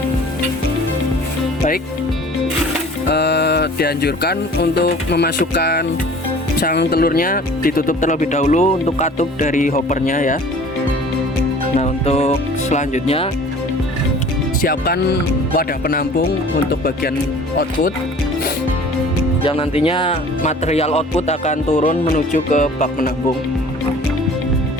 Baik, dianjurkan untuk memasukkan cangkang telurnya ditutup terlebih dahulu untuk katup dari hoppernya ya. Nah, untuk selanjutnya siapkan wadah penampung untuk bagian output yang nantinya material output akan turun menuju ke bak penampung.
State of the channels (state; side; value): normal; both; correlation 0.47